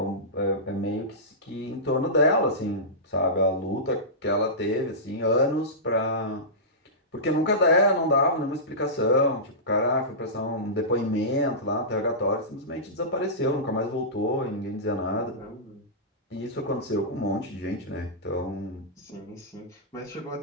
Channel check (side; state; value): both; normal; correlation -0.18